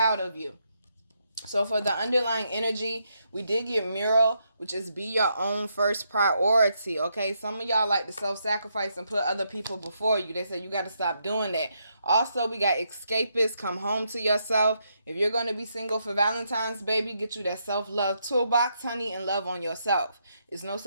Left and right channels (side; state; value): both; inverted; correlation -0.79